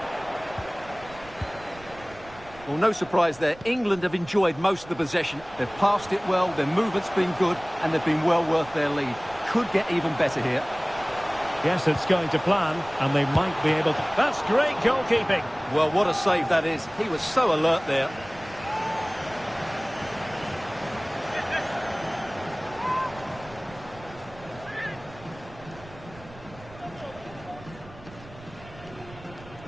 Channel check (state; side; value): noise; right; rumble, 20 dB below the sound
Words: Well, no surprise there. England have enjoyed most of the possession. They've passed it well, their movement's been good, and they've been well worth their lead. Could get even better here. Yes, it's going to plan, and they might be able to... That's great goalkeeping. Well, what a save that is. He was so alert there.